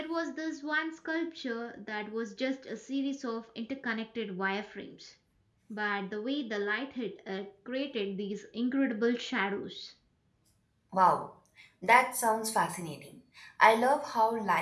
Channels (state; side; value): identical; both; correlation 1.00